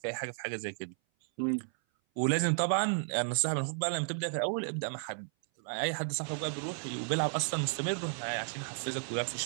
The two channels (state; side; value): silent; left; 56 dB below the other